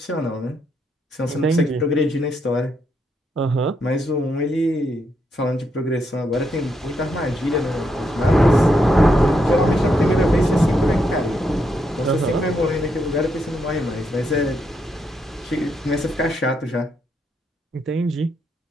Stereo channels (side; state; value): both; normal; correlation 0.79